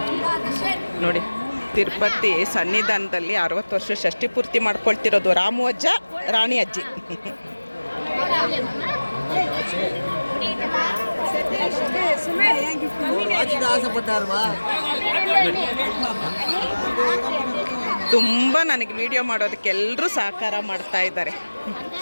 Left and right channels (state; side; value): inverted; both; correlation -1.00